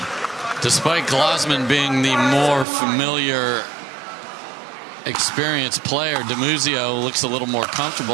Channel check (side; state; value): left; drops out; at 2.7 s